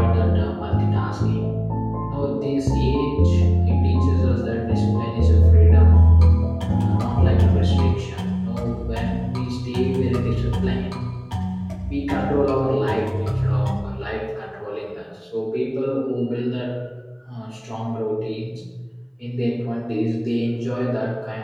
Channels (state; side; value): identical; both; correlation 1.00